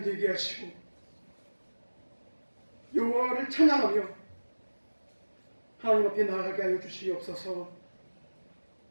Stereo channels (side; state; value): both; inverted; correlation -1.00